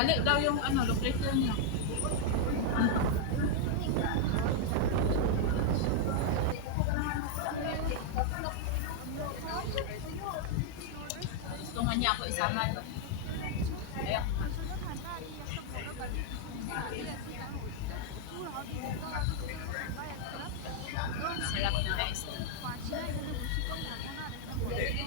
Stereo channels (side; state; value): both; different; correlation 0.00